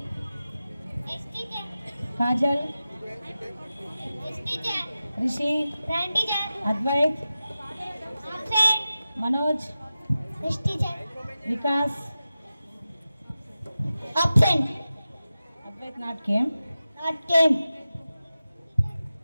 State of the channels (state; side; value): inverted; both; correlation -0.94